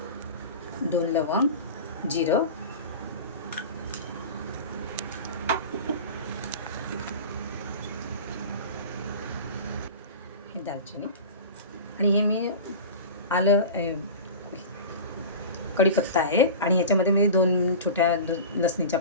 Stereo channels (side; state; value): both; inverted; correlation -0.32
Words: 2 लवंग, जिरं, हे दालचिनी आणि हे मी आलं कढीपत्ता आहे आणि ह्याच्यामध्ये मी 2 छोट्या लसणीच्या